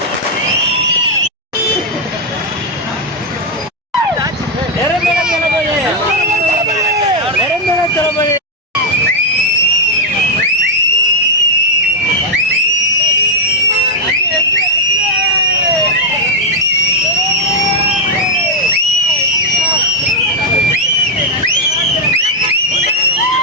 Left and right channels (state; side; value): normal; both; correlation -0.01